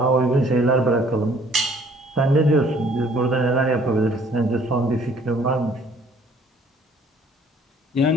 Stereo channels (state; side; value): normal; both; correlation 0.58